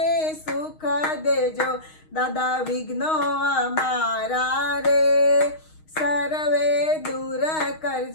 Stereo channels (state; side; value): late; right; 6.4 ms